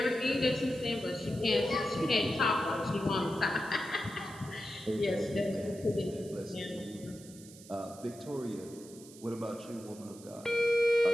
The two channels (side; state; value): right; noise; hiss, 19 dB below the sound